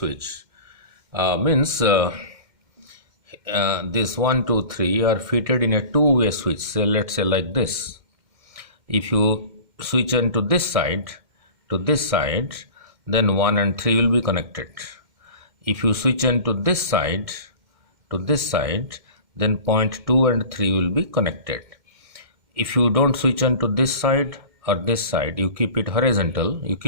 Means this 1, 2, 3 are fitted in a two-way switch. So let's say like this. If you switch on to this side, then 1 and 3 will be connected. If you switch on to this side, then point 2 and 3 will be connected. If you don't switch on to this side or this side, you keep it horizontal, you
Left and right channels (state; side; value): late; left; 2.1 ms